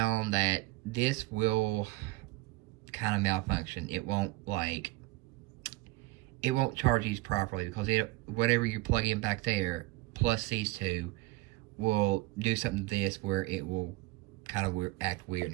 that this will kind of malfunction. It won't charge these properly because whatever you plug in back there plus these two will do something to this where it will kind of act weird and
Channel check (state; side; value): quieter; left; 20.5 dB